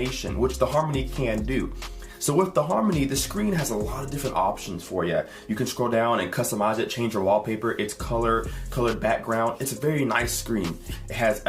which the Harmony can do. So with the Harmony, the screen has a lot of different options for you. You can scroll down and customize it, change your wallpaper, its colored background. It's a very nice screen. It has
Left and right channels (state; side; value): identical; both; correlation 1.00